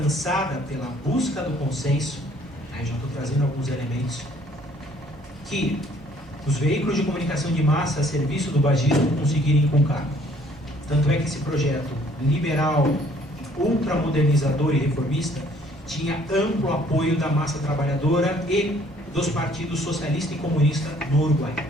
pela busca do consenso. Aí já estou trazendo alguns elementos que os veículos de comunicação de massa a serviço do bagismo conseguirem inculcar. Tanto é que esse projeto liberal, ultramodernizador e reformista tinha amplo apoio da massa trabalhadora e dos partidos socialista e comunista no Uruguai.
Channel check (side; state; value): right; noise; hum, 23 dB below the sound